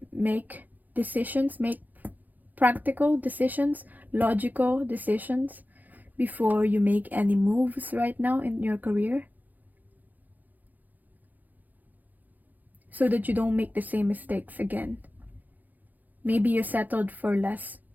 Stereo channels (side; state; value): left; late; 0.083 ms